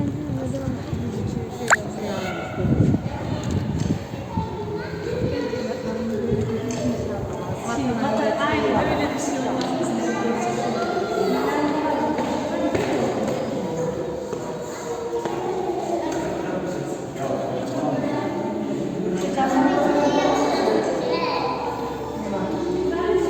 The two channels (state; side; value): identical; both; correlation 1.00